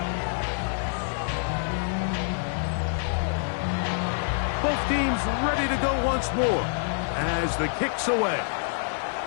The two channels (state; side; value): silent; right; digital silence